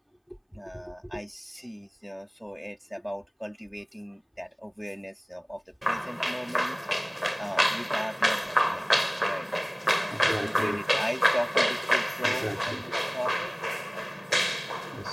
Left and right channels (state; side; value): identical; both; correlation 1.00